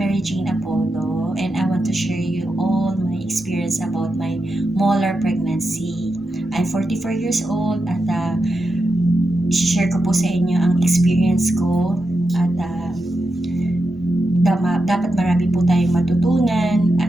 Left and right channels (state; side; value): normal; both; correlation 0.88